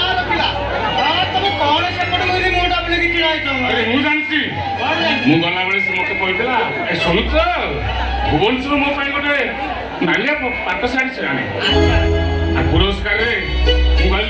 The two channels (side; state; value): both; identical; correlation 1.00